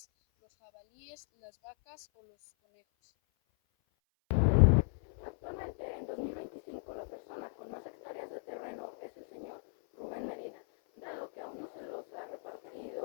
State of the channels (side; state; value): right; silent; 54 dB below the other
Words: los jabalíes, las vacas o los conejos. Actualmente, en 2025, la persona con más hectáreas de terreno es el señor Rubén Medina, dado que aún no se los ha